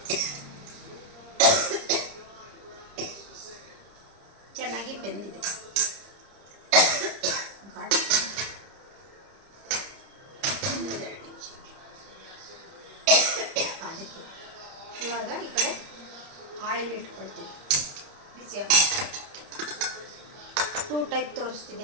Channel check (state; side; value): late; left; 30 ms